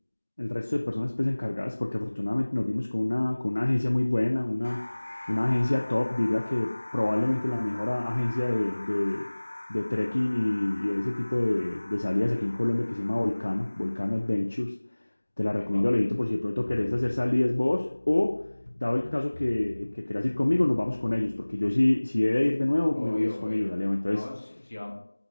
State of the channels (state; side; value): inverted; both; correlation -1.00